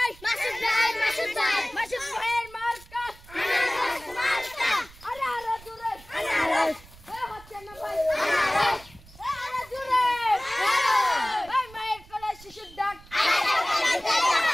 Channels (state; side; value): noise; right; rumble, 22 dB below the sound